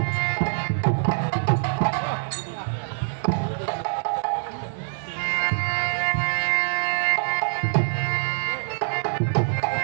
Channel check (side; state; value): left; silent; 62 dB below the other